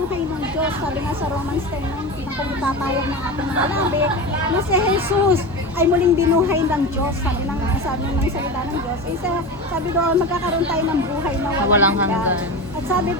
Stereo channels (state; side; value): normal; both; correlation 0.25